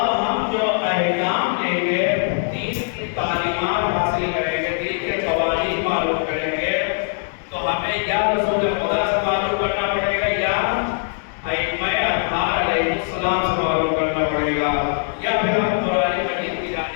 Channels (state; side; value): silent; right; digital silence